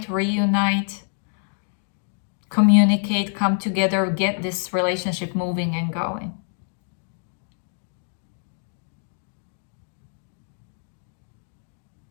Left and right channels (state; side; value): silent; right; digital silence